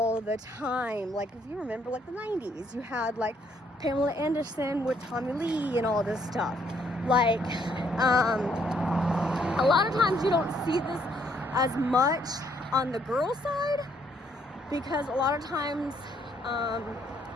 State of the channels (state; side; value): normal; both; correlation 0.69